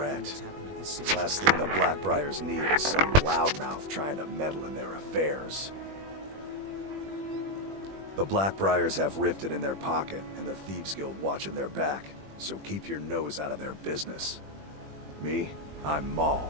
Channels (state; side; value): late; left; 21 ms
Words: Last thing the Blackbriars need is some loudmouth trying to meddle in their affairs. The Blackbriars have Riften in their pocket, and the Thieves Guild watching their back, so keep your nose out of their business. Me? I'm